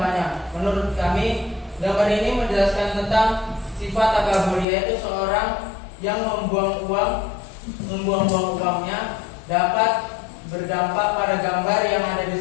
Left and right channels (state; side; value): drops out; right; at 4.7 s